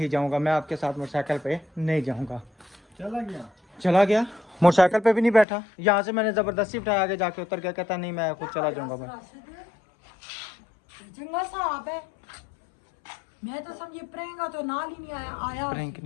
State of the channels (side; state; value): right; drops out; at 5.5 s